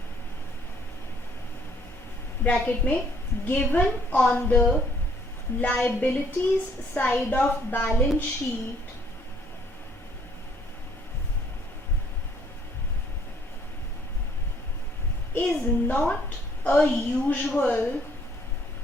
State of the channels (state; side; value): normal; both; correlation 0.63